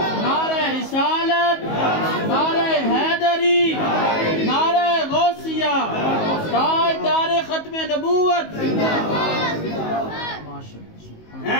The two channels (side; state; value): right; late; 19 ms